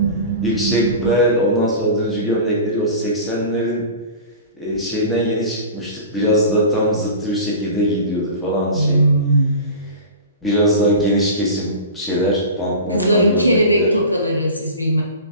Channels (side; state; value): both; inverted; correlation -0.33